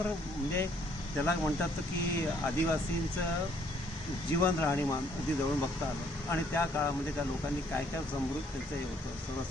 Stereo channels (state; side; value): normal; both; correlation 0.64